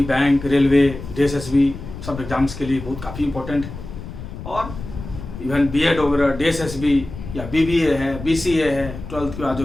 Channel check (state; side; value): noise; left; rumble, 11 dB below the sound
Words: बैंक, रेलवे, डीएसएसबी सब एग्जाम्स के लिए बहुत काफ़ी इम्पोर्टेंट है। और इवन बीएड वगैरह, डीएसएसबी या बीबीए है, बीसीए है, 12th के बाद जो